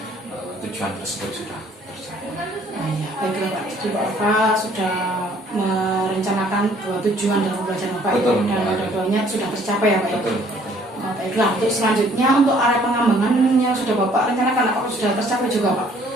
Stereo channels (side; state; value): both; normal; correlation 0.60